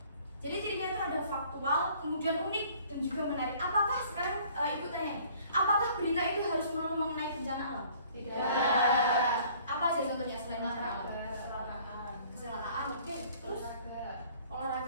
Jadi cirinya itu ada faktual, kemudian unik dan juga menarik. Apakah sekarang ibu tanya, apakah berita itu harus melulu mengenai bencana alam? Tidak. Apa aja contohnya selain bencana alam? Kecelakaan, oke. Terus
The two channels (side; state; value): both; inverted; correlation -0.55